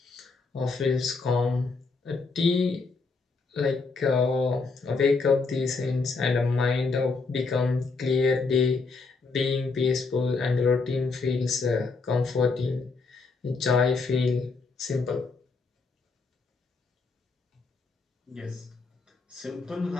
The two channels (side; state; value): right; quieter; 4.2 dB